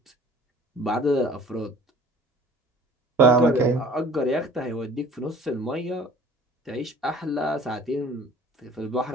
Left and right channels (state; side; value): normal; both; correlation 0.49